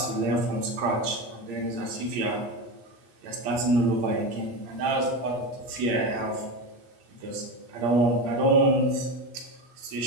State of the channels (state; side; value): late; left; 8.8 ms